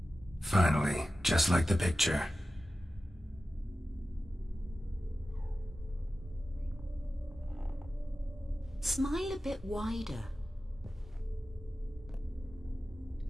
Finally, just like the picture. Smile a bit wider.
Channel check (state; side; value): normal; both; correlation 0.94